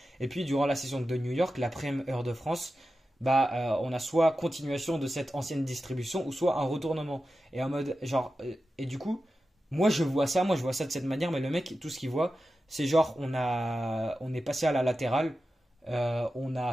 Et puis durant la session de New York, la prime heure de France, bah, on a soit continuation de cette ancienne distribution ou soit un retournement. Et en mode, genre, et du coup, moi je vois ça de cette manière, mais le mec, tout ce qu'il voit, c'est genre, on est passé à la latérale, on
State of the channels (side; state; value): both; normal; correlation 0.92